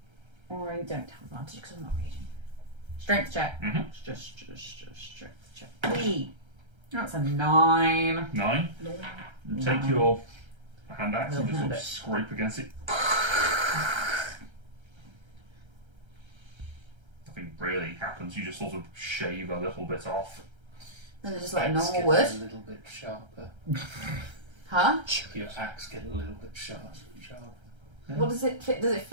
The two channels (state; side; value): late; left; 1.3 ms